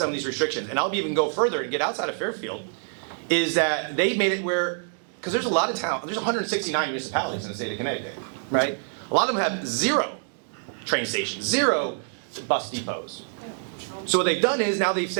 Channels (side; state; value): left; silent; digital silence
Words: of these restrictions. And I'll even go further and get outside of Fairfield, is that they've made it where, because there's a lot of towns, there's 169 municipalities in the state of Connecticut, right? A lot of them have 0 train stations, 0 bus depots. So what they've done is now they've